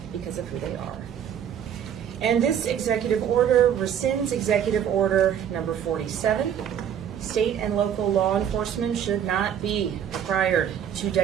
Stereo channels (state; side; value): quieter; left; 9.1 dB